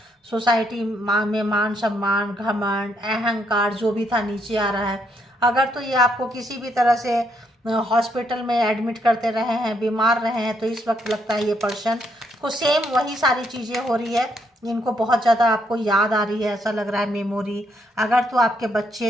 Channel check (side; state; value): both; normal; correlation 0.74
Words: सोसाइटी में मान सम्मान, घमंड, अहंकार जो भी था नीचे आ रहा है। अगर तो ये आपको किसी भी तरह से हॉस्पिटल में एडमिट करते रहे हैं, बीमार रहे हैं, तो इस वक्त लगता है ये पर्सन को सेम वही सारी चीज़ें हो रही है। इनको बहुत ज़्यादा आपको याद आ रही है, ऐसा लग रहा है, मेमोरी। अगर तो आपके बच्चे